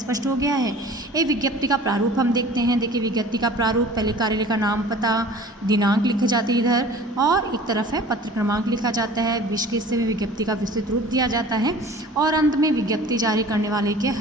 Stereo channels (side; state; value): both; normal; correlation 0.44